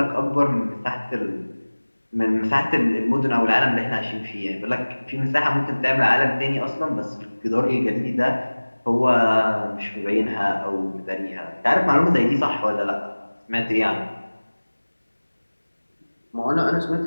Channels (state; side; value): inverted; both; correlation -1.00